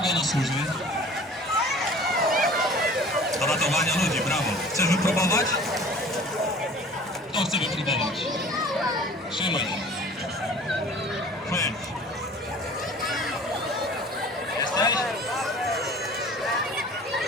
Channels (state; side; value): normal; both; correlation 0.46